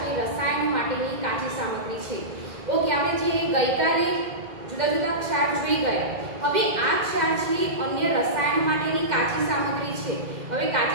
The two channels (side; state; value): left; late; 2.0 ms